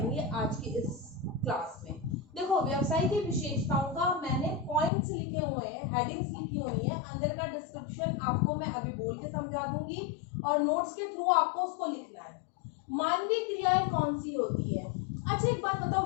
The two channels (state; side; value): drops out; right; at 4.9 s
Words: आज की इस क्लास में। देखो, व्यवसाय की विशेषताओं का मैंने पॉइंट्स लिखे हुए हैं, हेडिंग्स लिखी हुई है, अंदर का डिस्क्रिप्शन आपको मैं अभी बोल के समझा दूंगी और नोट्स के थ्रू आपको उसको लिखना है। मानवीय क्रियाएं कौन सी होती है? अच्छा, एक बात बताओ,